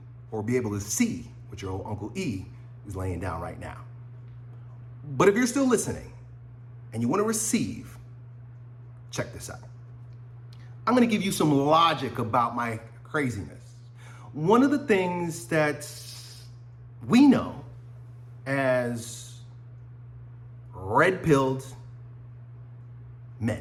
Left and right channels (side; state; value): both; identical; correlation 1.00